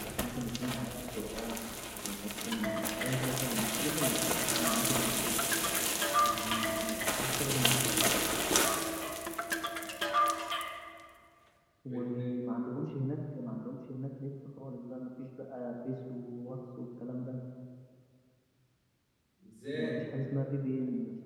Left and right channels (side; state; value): both; identical; correlation 1.00